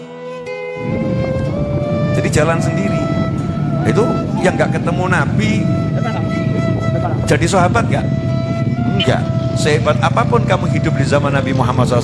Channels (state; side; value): identical; both; correlation 1.00